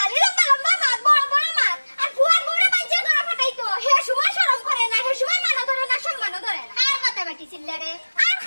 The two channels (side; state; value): both; inverted; correlation -1.00